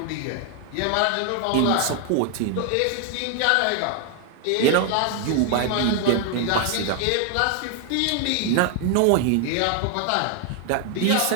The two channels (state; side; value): different; both; correlation 0.00